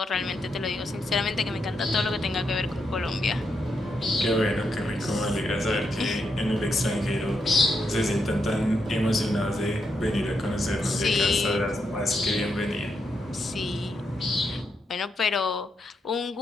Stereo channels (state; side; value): normal; both; correlation 0.81